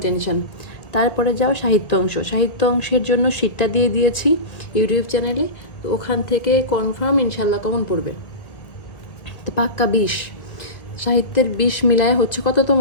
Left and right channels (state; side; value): late; right; 1.8 ms